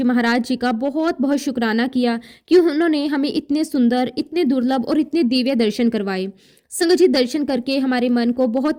महाराज जी का बहुत बहुत शुक्राना किया कि उन्होंने हमें इतने सुंदर, इतने दुर्लभ और इतने दिव्य दर्शन करवाए। संगत जी, दर्शन करके हमारे मन को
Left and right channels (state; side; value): identical; both; correlation 1.00